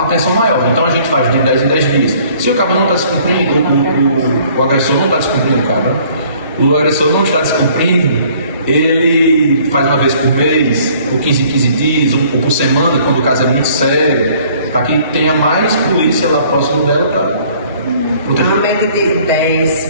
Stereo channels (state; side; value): inverted; both; correlation -0.57